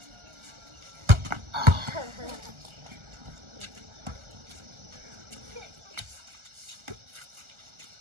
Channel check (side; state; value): left; late; 1.4 ms